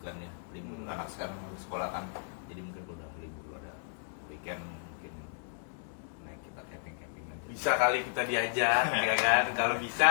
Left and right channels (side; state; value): right; silent; digital silence